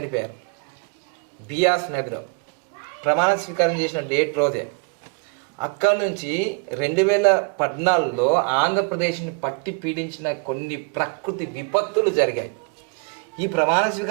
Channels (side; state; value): left; quieter; 32.7 dB